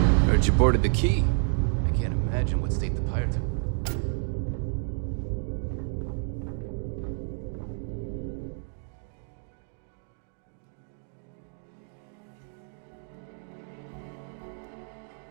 Heard you boarded the key. I can't imagine what state the pirates have left.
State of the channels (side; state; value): left; silent; 58 dB below the other